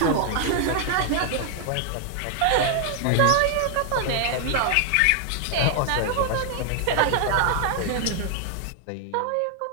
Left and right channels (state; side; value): different; both; correlation 0.00